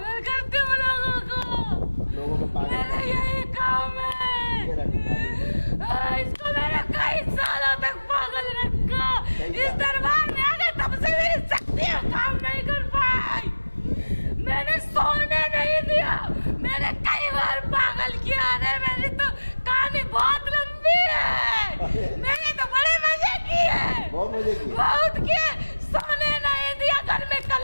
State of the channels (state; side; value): inverted; both; correlation -1.00